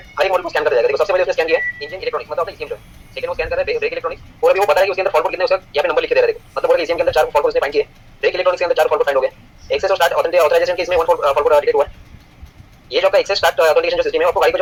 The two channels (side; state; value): both; identical; correlation 1.00